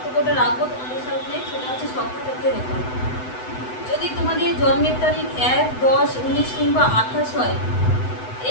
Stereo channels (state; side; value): late; right; 8.0 ms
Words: রাখবো তোমাদের সামনে সেটা হচ্ছে সংখ্যাতত্ত্বের ওপর। যদি তোমাদের জন্মের তারিখ 1, 10, 19 কিংবা 28 হয়,